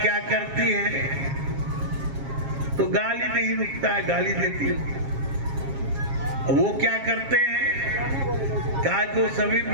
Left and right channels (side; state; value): left; late; 7.4 ms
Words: क्या करती है, तो गाली नहीं रुकता है, गाली देती हूं। वो क्या करते हैं, कहा को सभी